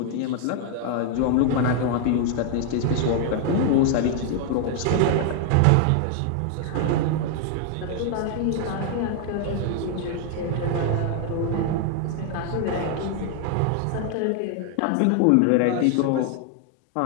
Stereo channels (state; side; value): different; both; correlation 0.00